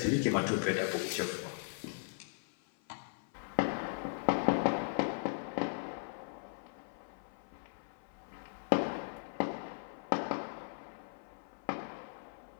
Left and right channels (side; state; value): right; silent; 52 dB below the other